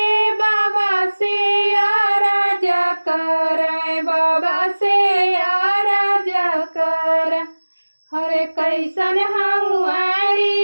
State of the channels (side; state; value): both; inverted; correlation -1.00